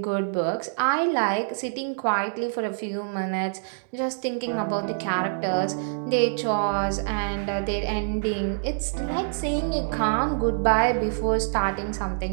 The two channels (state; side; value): silent; left; digital silence